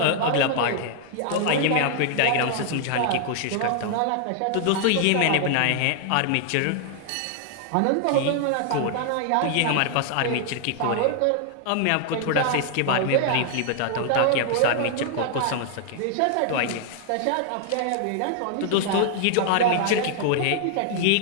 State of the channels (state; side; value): different; both; correlation 0.00